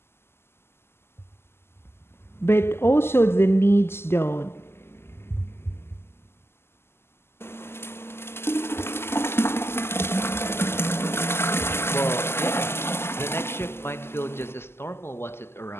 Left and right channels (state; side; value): late; right; 0.12 ms